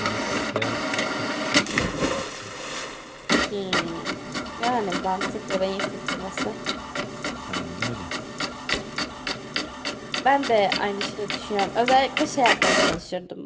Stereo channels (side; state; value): both; identical; correlation 1.00